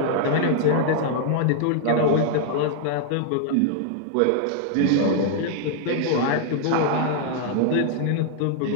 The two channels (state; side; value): different; both; correlation -0.01